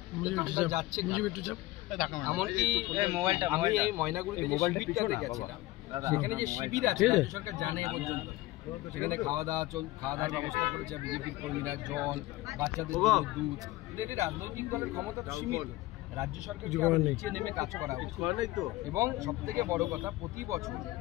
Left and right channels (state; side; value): quieter; right; 18.4 dB